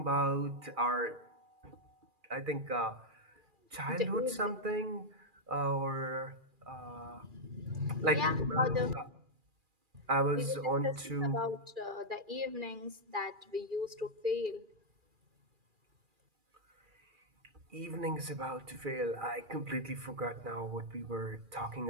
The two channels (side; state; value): left; late; 2.4 ms